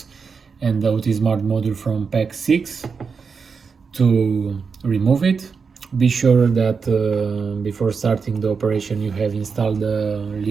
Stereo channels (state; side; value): quieter; left; 5.4 dB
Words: and the OT Smart module from pack 6 to remove it. Be sure that before starting the operation you have installed the